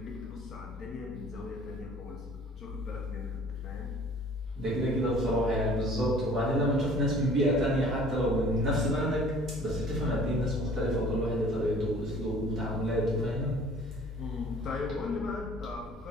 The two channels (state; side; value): normal; both; correlation 0.51